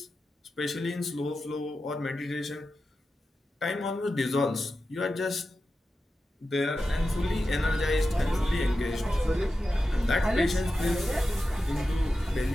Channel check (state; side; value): normal; both; correlation 0.92